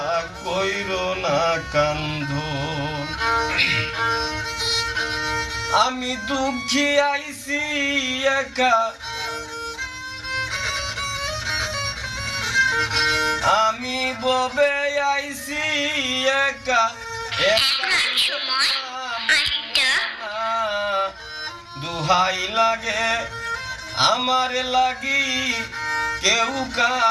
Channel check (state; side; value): identical; both; correlation 1.00